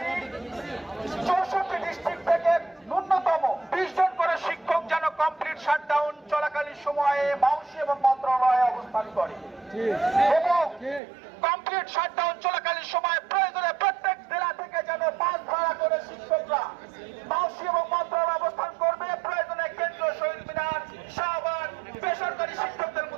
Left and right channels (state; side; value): drops out; left; at 11.0 s